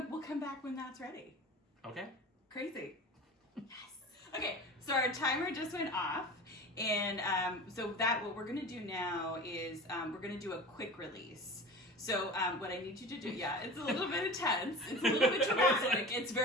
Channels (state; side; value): normal; both; correlation 0.35